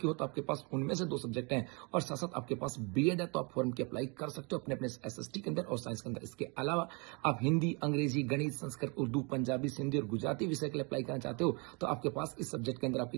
हो तो आपके पास उनमें से 2 सब्जेक्ट हैं और साथ साथ आपके पास बीएड है, तो आप फॉर्म की अप्लाई कर सकते हो अपने अपने एसएसटी के अंदर और साइंस के अंदर। इसके अलावा आप हिंदी, अंग्रेजी, गणित, संस्कृत, उर्दू, पंजाबी, सिंधी और गुजराती विषय के लिए अप्लाई करना चाहते हो तो आपके पास इस सब्जेक्ट के अंदर आपकी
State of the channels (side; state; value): left; quieter; 31.5 dB